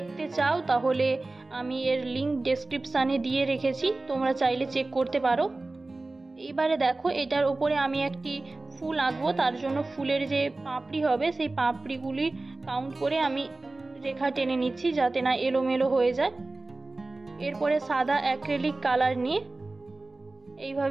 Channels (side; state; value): left; quieter; 3.1 dB